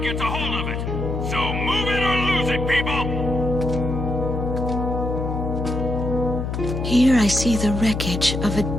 a hold of it. So move it or lose it, people! Here I see the wreckage of a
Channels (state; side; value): noise; left; hum, 3 dB below the sound